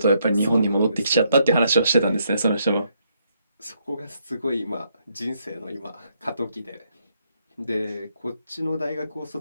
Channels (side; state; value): both; inverted; correlation -0.74